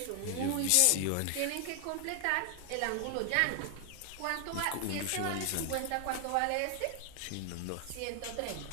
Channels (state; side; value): different; both; correlation 0.00